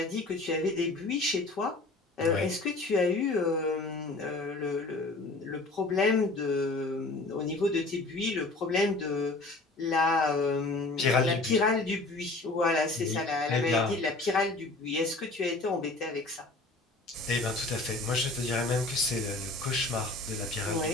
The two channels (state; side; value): quieter; right; 3.1 dB